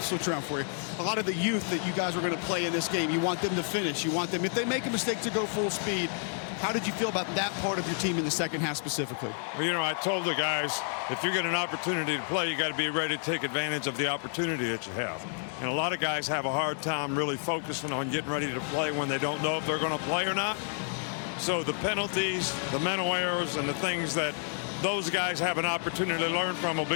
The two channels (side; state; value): right; silent; 58 dB below the other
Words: switch around for you. A lot of the youth that you guys were going to play in this game, you want them to finish. You want them, if they make a mistake, to go full speed. How did you feel about that part of your team in the second half specifically? Well, you know, I told the guys, if you get an opportunity to play, you got to be ready to take advantage of the opportunity that you have. And a lot of guys have a hard time really focusing on getting ready to play when they don't know if they're going to play or not. So the penalties, the mental errors, and the things that those guys have an opportunity to learn from will